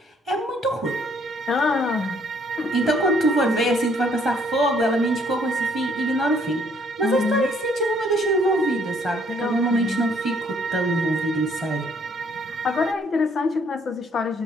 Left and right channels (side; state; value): both; normal; correlation 0.64